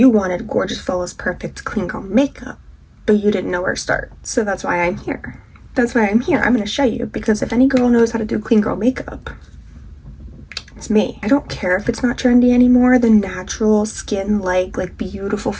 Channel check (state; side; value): identical; both; correlation 1.00